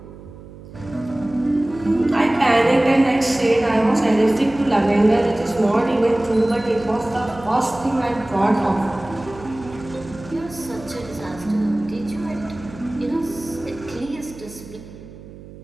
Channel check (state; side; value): noise; right; hum, 17 dB below the sound